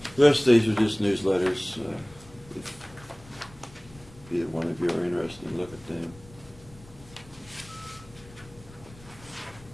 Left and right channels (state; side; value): noise; left; rumble, 22 dB below the sound